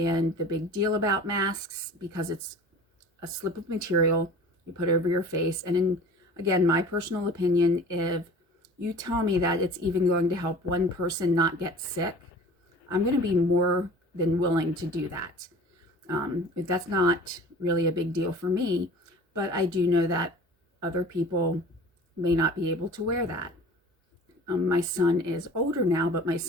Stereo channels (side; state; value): both; normal; correlation 0.42